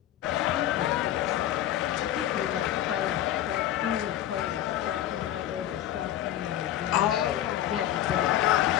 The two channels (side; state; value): right; quieter; 12.3 dB